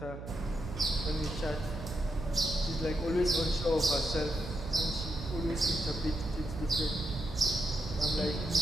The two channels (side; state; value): right; noise; hum, 10 dB below the sound